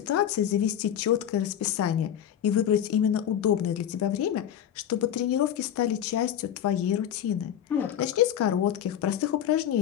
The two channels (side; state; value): right; quieter; 10.1 dB